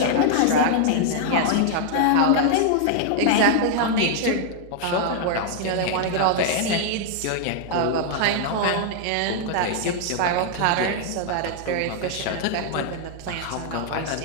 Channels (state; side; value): different; both; correlation 0.00